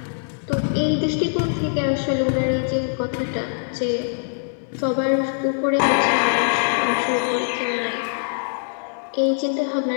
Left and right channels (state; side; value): silent; right; 64 dB below the other